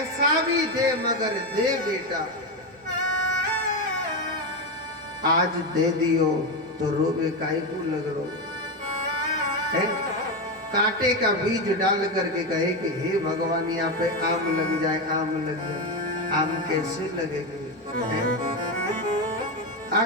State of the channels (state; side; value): normal; both; correlation 0.12